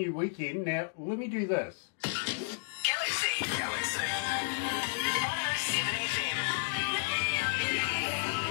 weekend. Now, let me do this. Galaxy 107 FM.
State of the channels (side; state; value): right; silent; digital silence